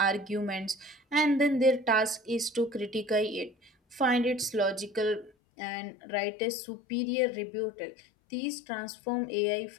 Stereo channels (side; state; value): right; drops out; at 5.3 s